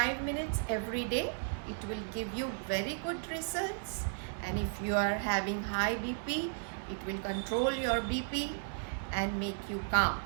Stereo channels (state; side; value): silent; left; 55 dB below the other